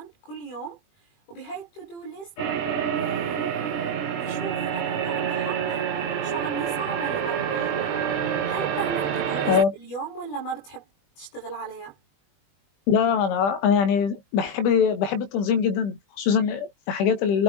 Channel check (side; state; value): right; late; 20 ms